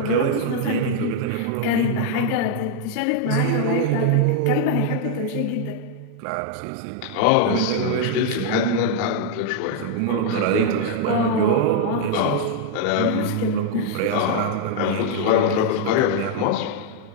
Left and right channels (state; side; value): different; both; correlation 0.00